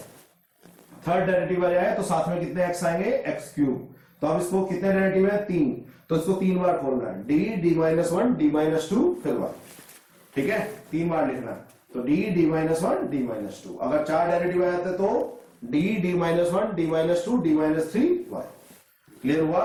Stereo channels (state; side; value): identical; both; correlation 1.00